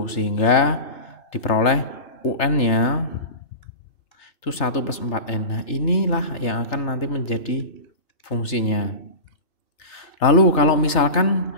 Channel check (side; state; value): right; late; 3.3 ms